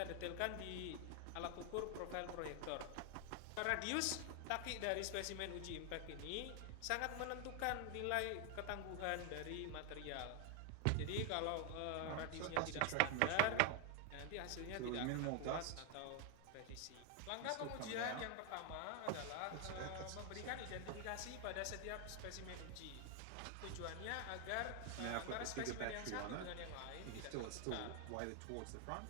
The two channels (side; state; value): both; different; correlation 0.01